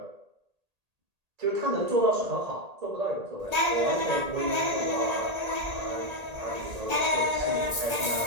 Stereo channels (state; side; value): late; left; 1.8 ms